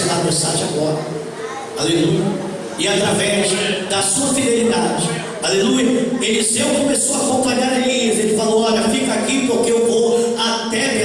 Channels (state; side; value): identical; both; correlation 1.00